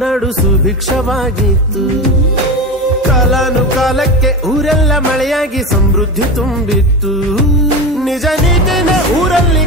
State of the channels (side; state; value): both; normal; correlation 0.23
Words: ಸುಭಿಕ್ಷವಾಗಿತ್ತು. ಕಾಲಾನುಕಾಲಕ್ಕೆ ಊರೆಲ್ಲ ಮಳೆಯಾಗಿ ಸಮೃದ್ಧಿ ತುಂಬಿತ್ತು. ನಿಜ ನೀತಿನೇ ಊರಲ್ಲಿ